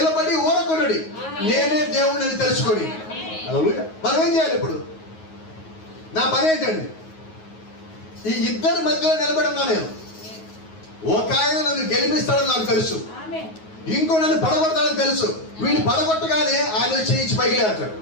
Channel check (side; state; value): right; late; 9.4 ms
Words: ఊరకొనుడి, నేనే దేవుడిని అని తెలుసుకొని. మనం ఏం చేయాలి ఇప్పుడు? నా పని ఏంటండి? ఈ ఇద్దరి మధ్యలో నిలబడి ఉన్నా నేను. ఒక ఆయన నన్ను గెలిపిస్తాడని నాకు తెలుసు, ఇంకో నన్ను పడగొడతాడని తెలుసు. వీడిని పడగొట్టగానే ఆయన చేయించి పైకి లేస్తాడు.